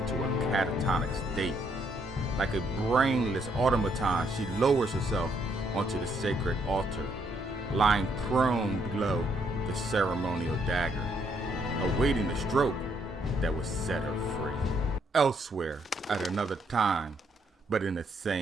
a catatonic state. Like a brainless automaton, she lowers herself onto the sacred altar, lying prone below the ceremonial dagger, awaiting the stroke that would set her free. Elsewhere, at another time, but in the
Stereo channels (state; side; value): normal; both; correlation 0.72